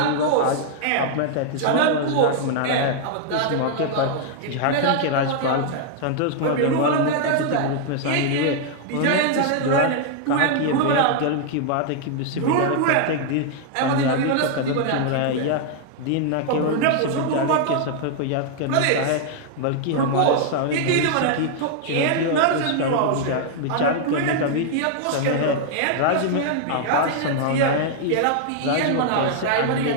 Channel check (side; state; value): both; different; correlation 0.00